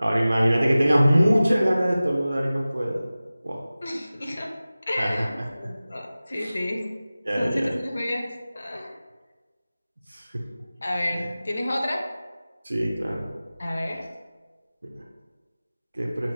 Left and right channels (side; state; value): both; inverted; correlation -0.97